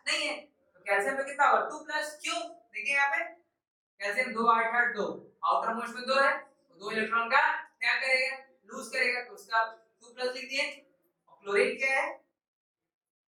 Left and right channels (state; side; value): identical; both; correlation 1.00